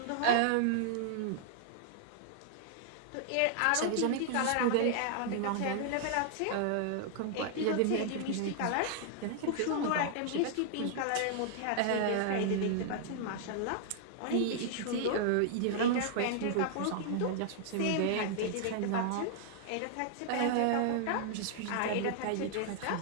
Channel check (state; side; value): different; both; correlation -0.01